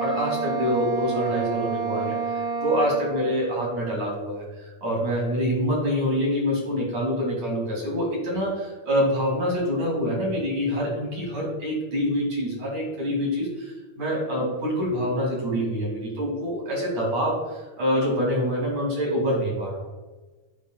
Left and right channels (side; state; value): left; late; 8.7 ms